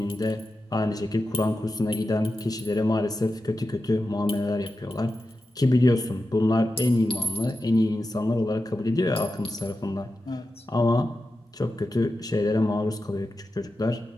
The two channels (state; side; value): normal; both; correlation 0.91